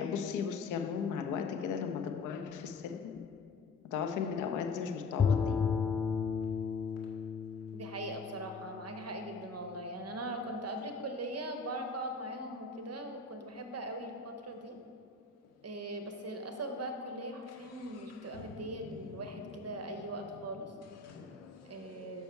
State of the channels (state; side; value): quieter; right; 4.0 dB